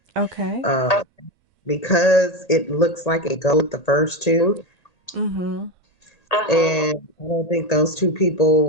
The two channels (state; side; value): late; right; 1.8 ms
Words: Okay. Because it looks like it goes with the first two. Mm-hmm. And I don't think those two people